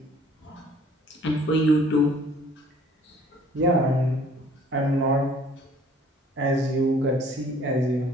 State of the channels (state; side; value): normal; both; correlation 0.55